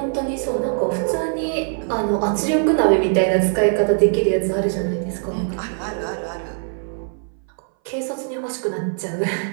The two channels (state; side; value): silent; left; 60 dB below the other